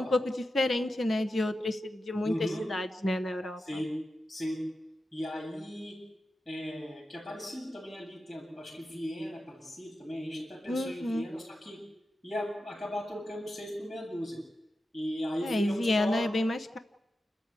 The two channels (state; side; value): normal; both; correlation 0.91